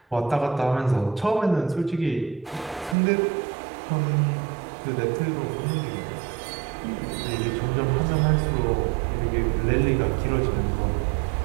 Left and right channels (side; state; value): left; drops out; at 3.0 s